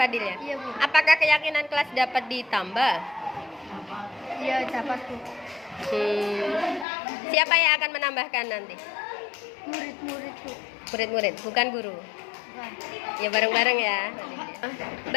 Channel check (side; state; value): right; drops out; at 6.9 s